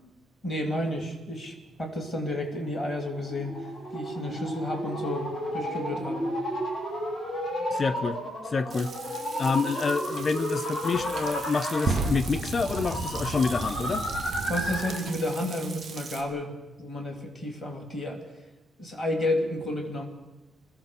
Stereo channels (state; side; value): normal; both; correlation 0.77